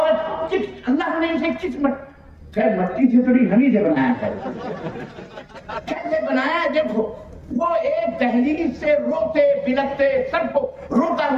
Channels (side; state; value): both; identical; correlation 1.00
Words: اللہ نے اسے کس مٹی سے تھوڑی ہمیں سے بنایا ہے، کیسے بنایا؟ دیکھو وہ ایک دہلیز سے روتے بلکتے سب کو روتا